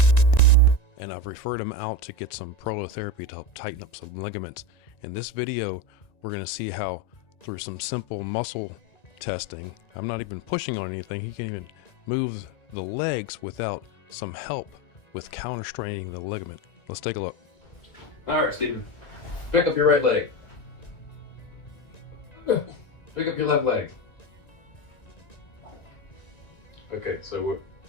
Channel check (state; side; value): late; right; 1.9 ms